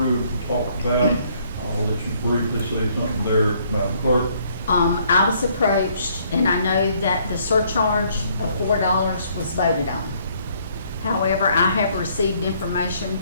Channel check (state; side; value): inverted; both; correlation -0.65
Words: and talked about. I'll let you briefly say something there, Madam Clerk. I was approached, and I know that the surcharge of $4 was voted on. However, I have received information